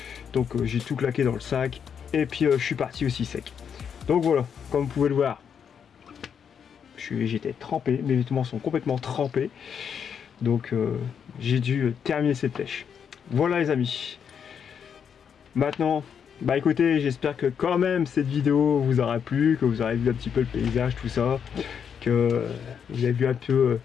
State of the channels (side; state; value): right; quieter; 7.5 dB